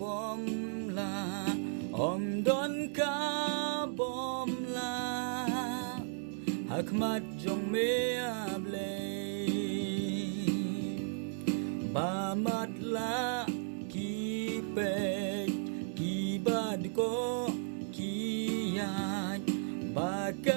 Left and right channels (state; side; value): silent; left; digital silence